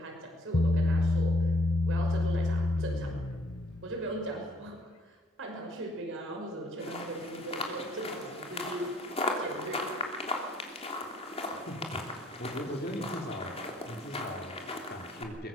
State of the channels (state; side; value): normal; both; correlation 0.64